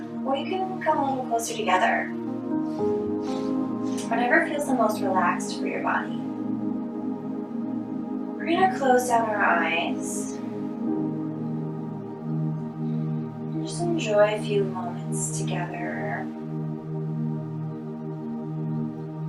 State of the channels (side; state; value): both; identical; correlation 1.00